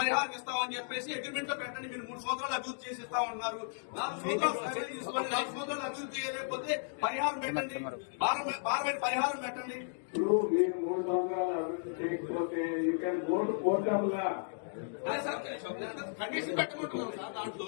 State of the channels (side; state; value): right; silent; digital silence